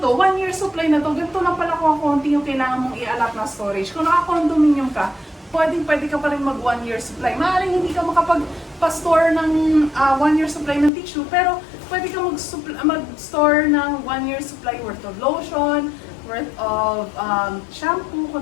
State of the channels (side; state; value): right; drops out; at 10.9 s